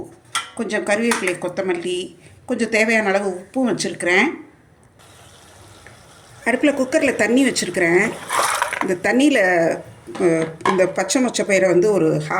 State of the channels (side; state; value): both; identical; correlation 1.00